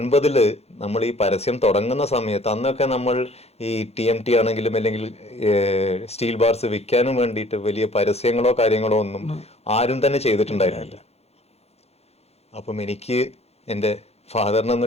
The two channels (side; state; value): right; late; 0.30 ms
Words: നമ്മൾ ഈ പരസ്യം തുടങ്ങുന്ന സമയത്ത് അന്നൊക്കെ നമ്മൾ ഈ TMT ആണെങ്കിലും അല്ലെങ്കിൽ സ്റ്റീൽ ബാർസ് വിൽക്കാനും വേണ്ടിയിട്ട് വലിയ പരസ്യങ്ങളോ കാര്യങ്ങളോ ഒന്നും ആരും തന്നെ ചെയ്തിട്ടുണ്ടായിരുന്നില്ല. അപ്പം എനിക്ക് എൻ്റെ ഫാദറിനെ ഒന്ന്